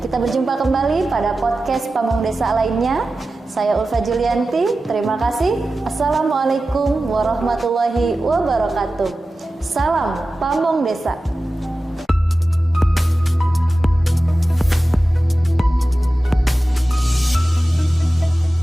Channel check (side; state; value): both; normal; correlation 0.94